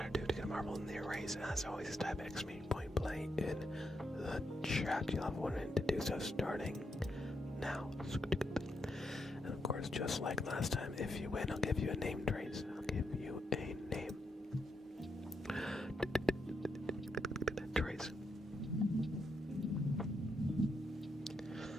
do to get a marble in the race. As always, type exclamation point play in the chat. You'll have one in to do so starting now. And of course, just like last time, if you win, I'll give you a name, Trace. I'll give you a name. Trace.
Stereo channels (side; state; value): both; normal; correlation 0.81